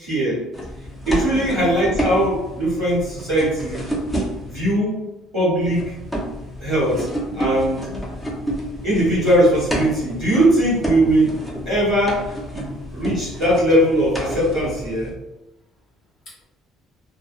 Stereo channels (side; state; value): both; normal; correlation 0.56